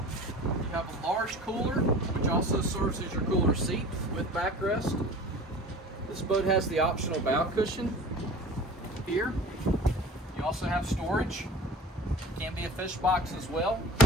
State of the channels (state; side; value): normal; both; correlation 0.41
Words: have a large cooler, which also serves as your cooler seat with backrest. This boat has the optional bow cushion here. You also have storage. Can be a fish box as well.